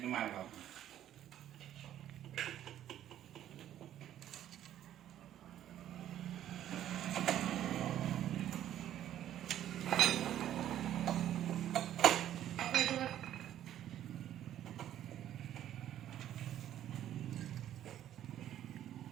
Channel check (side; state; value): left; quieter; 11.6 dB